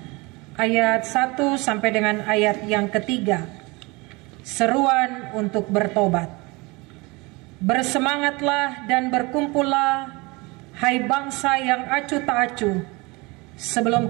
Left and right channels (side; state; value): left; quieter; 25.3 dB